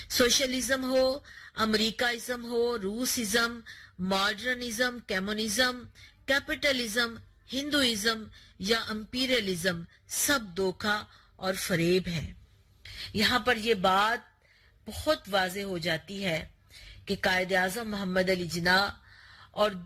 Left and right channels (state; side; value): identical; both; correlation 1.00